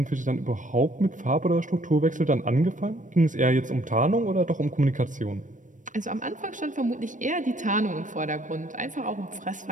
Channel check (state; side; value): late; left; 0.37 ms